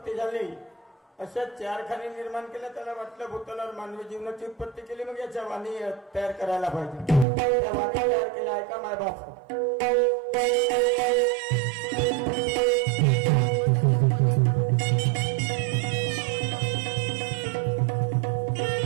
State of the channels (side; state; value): left; drops out; at 7.2 s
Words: झाली. अशा 4 खाणी निर्माण केल्या. त्याला वाटलं भूतलावर मानवी जीवनाची उत्पत्ती केली, मग याच्या वाणी तयार करायला पाहिजे. त्या वाणी तयार केल्या. ऐका माय बाप,